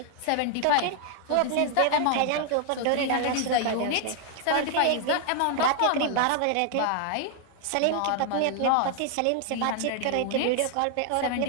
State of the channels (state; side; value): different; both; correlation 0.00